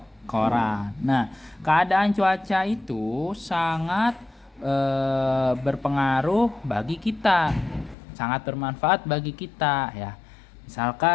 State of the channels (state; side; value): drops out; right; at 8.0 s